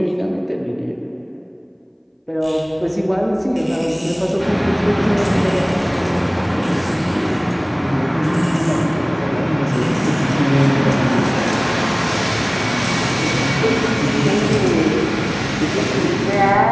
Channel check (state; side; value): identical; both; correlation 1.00